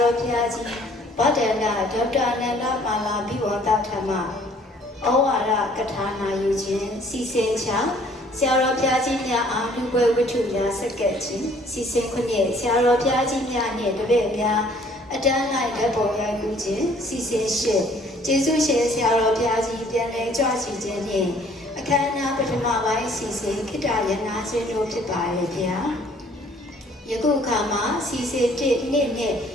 တော်ဘုရားကြီးဗဒ္ဒန္တဒေါက်တာနန္ဒမာလာဘိဝန္တထမဩဝါဒကထာနာယူခြင်းစီစဉ်ချဆရာတော်ဘုရားကြီးများအားလူပွဲဝတ္ထုများဆက်ကပ်ခြင်းစီစဉ်ခွင့်ဖြင့်ဆရာတော်ဘုရားကြီးများနှင့်တပည့်များအတန်းလိုက်ဓာတ်ပုံရိုက်ကူးခြင်းစီစဉ်ရှင်းကျေးဇူးရှင်ဆရာတော်ဘုရားကြီးပြန်လည်ကြွချီခြင်းနှင့်အခမ်းအနားပထမပိုင်းစီစဉ်ခိတ္တရနာခြင်းတို့ဖြစ်ပါရဲ့ဗျာယခုအခါမှာစီစဉ်1နှစ်နဲ့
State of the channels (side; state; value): both; normal; correlation 0.58